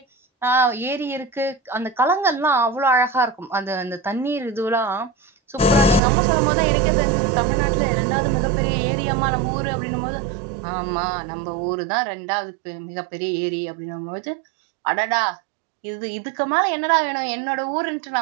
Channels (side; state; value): left; drops out; at 6.0 s